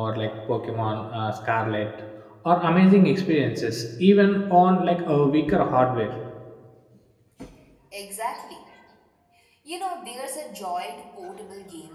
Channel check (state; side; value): identical; both; correlation 1.00